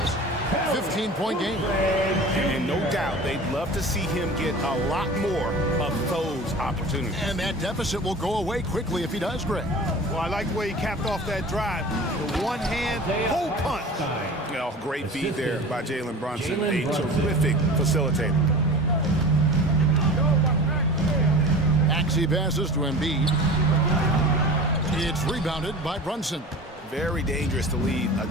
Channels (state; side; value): normal; both; correlation 0.37